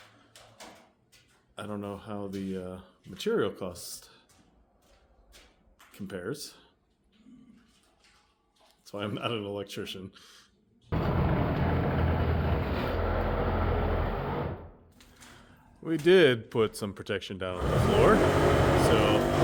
I don't know how the material cost compares. That's why I'm not an electrician. We did put some protection down on the floor.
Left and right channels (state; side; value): identical; both; correlation 1.00